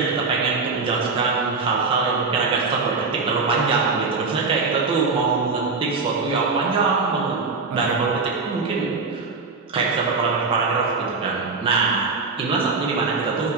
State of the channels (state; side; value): quieter; left; 4.3 dB